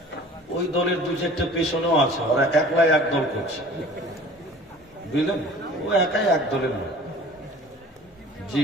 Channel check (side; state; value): both; normal; correlation 0.45